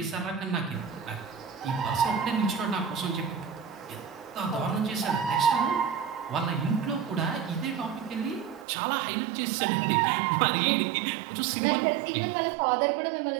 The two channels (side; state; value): left; drops out; at 8.7 s